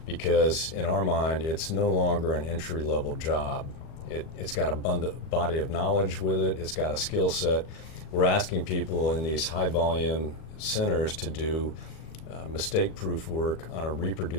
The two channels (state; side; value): late; right; 39 ms